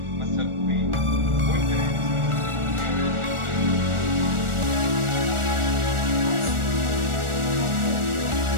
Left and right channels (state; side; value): late; left; 1.4 ms